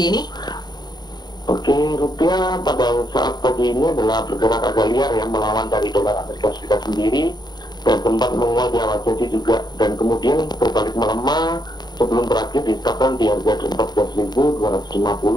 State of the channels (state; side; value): late; right; 0.20 ms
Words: ini? Oke, rupiah pada saat pagi ini adalah bergerak agak liar ya, melawan dari dolar Amerika Serikat sendiri dan sempat menguat di awal jadi juga, dan kemudian berbalik melemah sebelum berakhir ditetapkan di harga 14.250